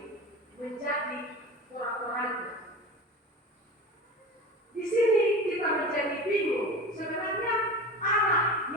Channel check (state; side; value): normal; both; correlation 0.31